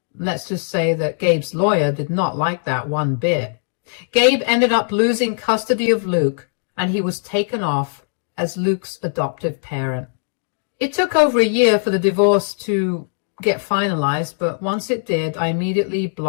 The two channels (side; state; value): right; silent; digital silence